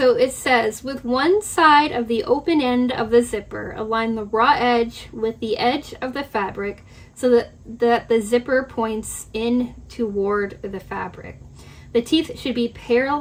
it says, with one side of the open end of the zipper, align the raw edge with the edge of the fabric so that the zipper points in toward the fabric. The teeth should be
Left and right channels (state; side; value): identical; both; correlation 1.00